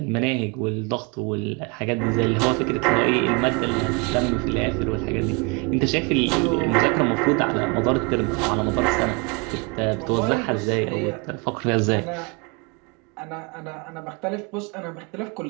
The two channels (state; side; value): quieter; left; 30.5 dB